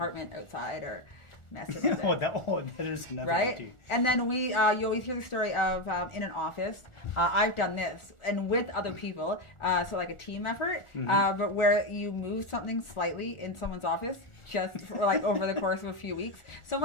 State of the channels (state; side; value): late; right; 1.4 ms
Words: outside or messing with it. that is another right? too. And then you always hear the story of in an office. I've done this and with other people, so like a team effort, but where you move something slightly in someone's office just for like over the course of a few weeks.